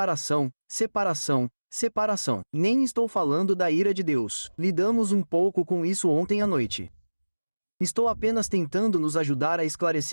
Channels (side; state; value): both; inverted; correlation -1.00